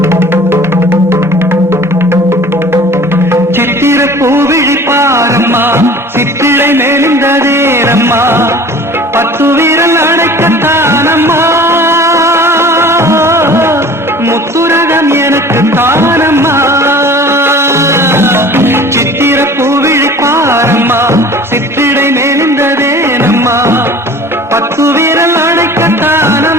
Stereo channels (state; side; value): normal; both; correlation 0.45